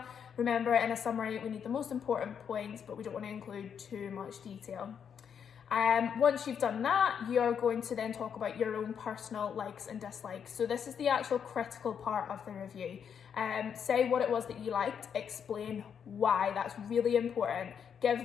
Remember, in a summary we need the most important points, but we don't want to include too much detail. Once you've done that, you're going to then talk about your own personal likes and dislikes. So this is the actual critical part of the review. Say what it was that you liked, explain why. That's really important. Give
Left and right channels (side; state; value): right; quieter; 7.6 dB